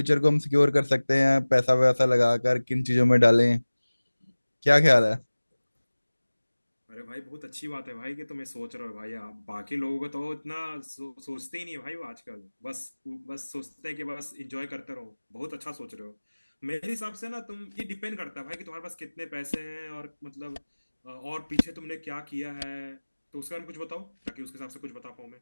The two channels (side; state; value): both; inverted; correlation -1.00